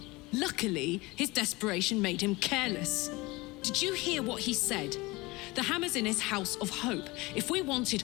Luckily, his desperation made him careless. Did you hear what he said? The hammer's in his house of hope. If we wanted,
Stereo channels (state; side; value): quieter; right; 22.7 dB